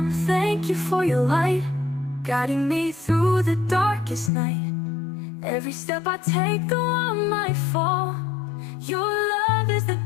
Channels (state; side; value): drops out; right; at 4.3 s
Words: thank you for your light, guiding me through the darkest night. Every step I take, though I might fall, your love is the